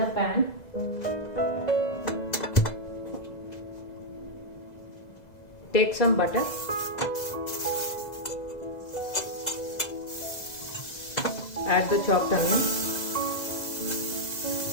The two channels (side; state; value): right; late; 2.0 ms